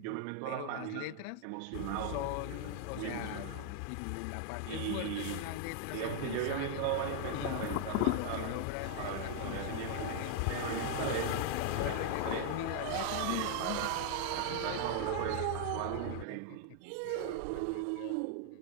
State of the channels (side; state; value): both; different; correlation 0.00